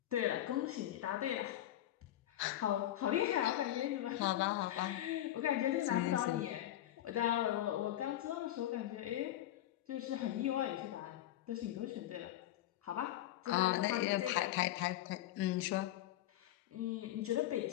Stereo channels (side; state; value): right; quieter; 13.4 dB